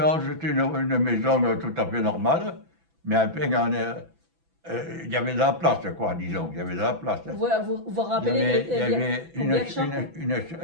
c'était une maison tout à fait normale, mais enfin, il y avait de la place, quoi, disons, il y avait de la place. Vous Il y rappelez avait, il y avait combien de chambres?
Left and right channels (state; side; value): late; left; 6.0 ms